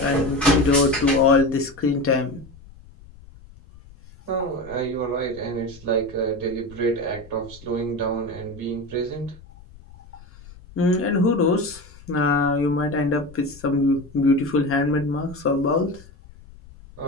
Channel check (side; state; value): left; noise; rumble, 21 dB below the sound